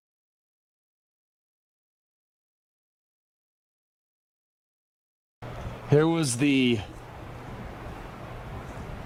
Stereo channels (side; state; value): both; identical; correlation 1.00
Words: Here was the